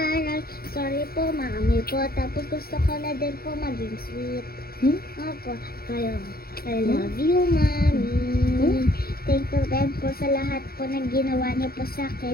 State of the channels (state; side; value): late; right; 0.44 ms